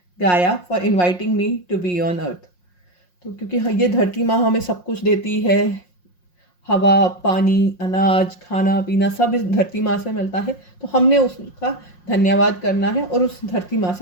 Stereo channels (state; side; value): late; right; 5.6 ms